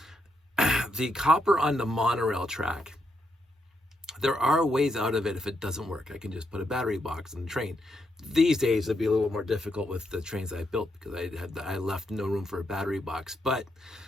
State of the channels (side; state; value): both; normal; correlation 0.80